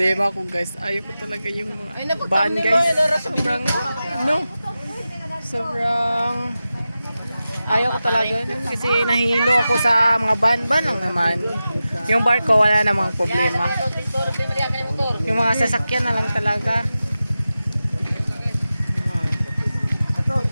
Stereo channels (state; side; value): inverted; both; correlation -0.94